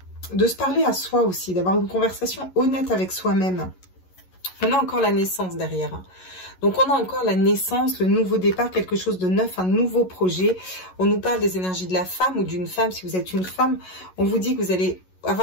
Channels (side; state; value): right; late; 11 ms